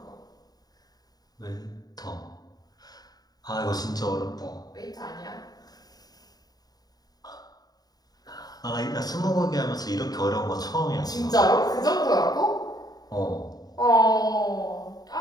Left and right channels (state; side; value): late; right; 0.19 ms